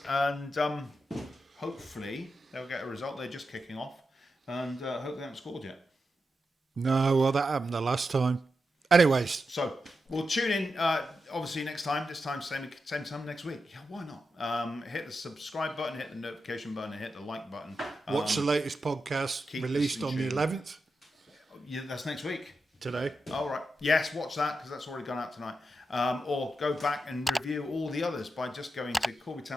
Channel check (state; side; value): normal; both; correlation 0.88